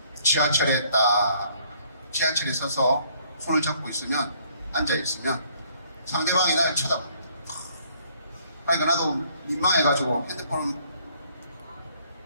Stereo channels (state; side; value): inverted; both; correlation -0.63